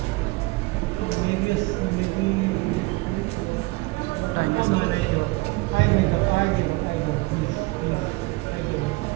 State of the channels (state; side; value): quieter; left; 23.7 dB